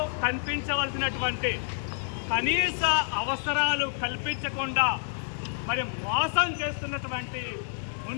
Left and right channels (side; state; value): right; silent; digital silence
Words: కనిపించవలసినటువంటి కనీస అవసరాలు కల్పించకుండా మరి మోసం చేస్తున్నటువంటి